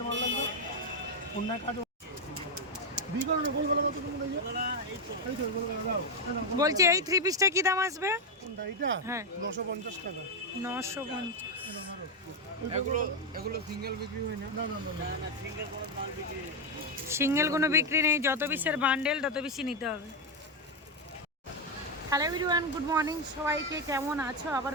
মাল লাগবে, অন্য কাটো বিকরণে বলবো কত তুমি লইয়া এই তো বলবো দাও। বলছি এই থ্রি পিসটা কি দাম আসবে? কোনটা এটা? হ্যাঁ, 950 টাকা। 950। এগুলো সিঙ্গেল বিক্রি হয় না? না না না না, সিঙ্গেল কোনো মাল বিক্রি নেই। সিঙ্গেল কোনো বিক্রি নেই, যত পিসের বান্ডেল তত বেশি নিতে হবে। হ্যালো এভরিওয়ান, গুড মর্নিং সবাইকে। কেমন আছো? আবার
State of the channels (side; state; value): both; normal; correlation 0.05